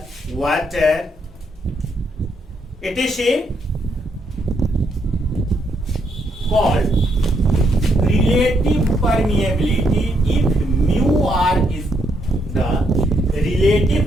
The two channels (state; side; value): normal; both; correlation 0.75